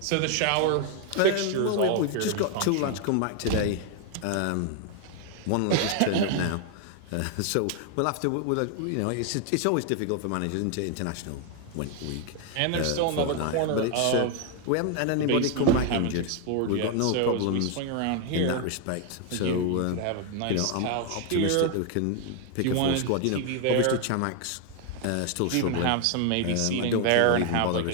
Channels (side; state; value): both; different; correlation 0.01